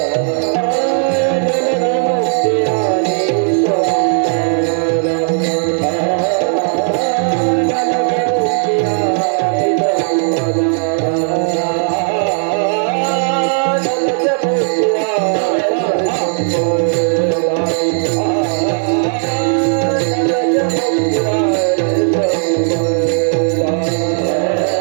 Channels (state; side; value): silent; left; 59 dB below the other